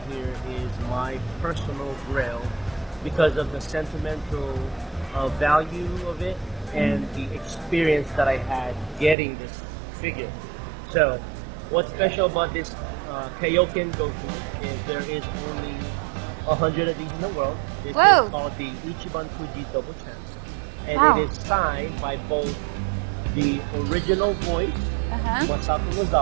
here is my personal grail because of the sentimental value of it and the experience that I had getting this figure. So what's special about this Kaioken Goku is there is only 100 of these in the world. This is called the Ichiban Fuji Double Chance. And it is signed by both the original voice, Masako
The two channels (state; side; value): drops out; left; at 9.2 s